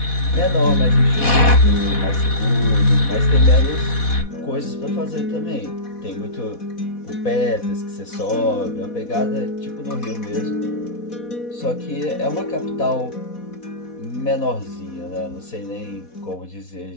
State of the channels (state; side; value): late; right; 4.1 ms